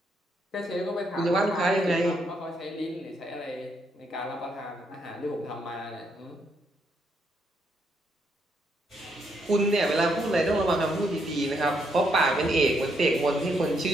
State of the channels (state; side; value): normal; both; correlation 0.76